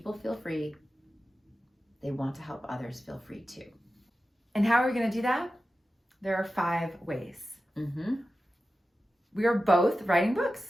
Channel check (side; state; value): both; normal; correlation 0.93